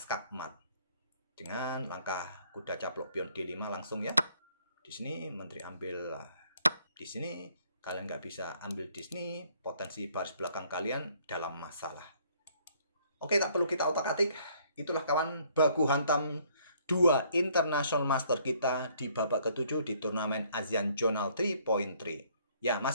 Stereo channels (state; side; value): inverted; both; correlation -0.64